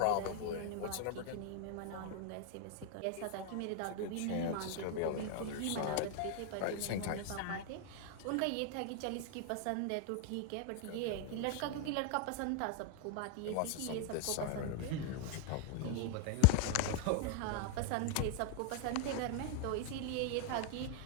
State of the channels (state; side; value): different; both; correlation 0.00